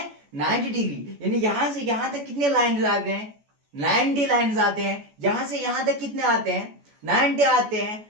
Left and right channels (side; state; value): left; late; 14 ms